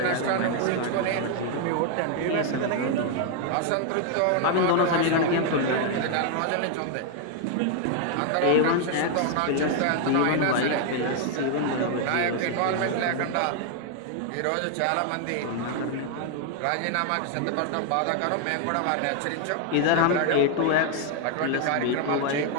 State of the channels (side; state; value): both; different; correlation 0.00